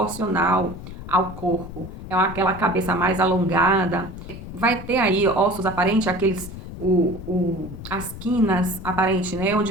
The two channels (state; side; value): noise; left; rumble, 11 dB below the sound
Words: ao corpo, é aquela cabeça mais alongada, vai ter aí ossos aparentes, aqueles, as quinas aparentes, né,